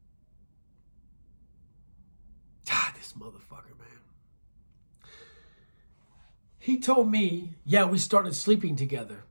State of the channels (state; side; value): inverted; both; correlation -1.00